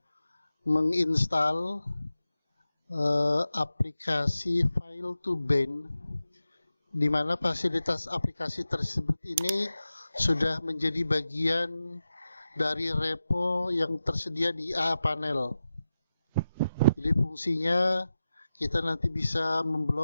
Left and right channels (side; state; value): both; inverted; correlation -0.92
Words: menginstal aplikasi File2Band, di mana fasilitas aplikasi tersebut ini sudah menjadi bagian dari repo yang tersedia di A-Panel. Jadi fungsinya kita nanti bisa